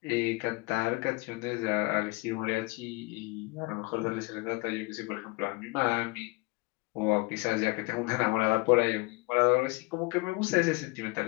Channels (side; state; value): right; quieter; 25.3 dB